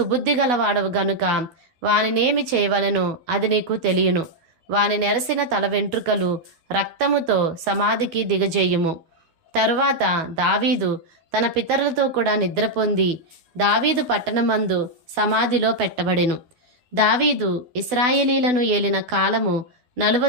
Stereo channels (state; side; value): late; left; 12 ms